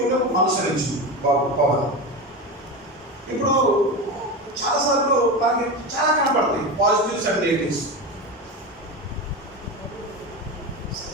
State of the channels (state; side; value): normal; both; correlation 0.21